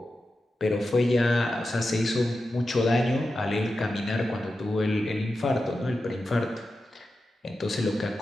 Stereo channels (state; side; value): normal; both; correlation 0.91